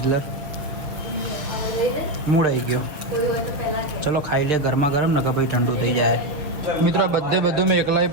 મૂડ આવી ગયો ચલો ખાઈ લે ગરમા ગરમ ને કે ભાઈ ઠંડુ થઈ જાય મિત્રો બધું મેં એકલાઈ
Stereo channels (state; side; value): late; left; 6.8 ms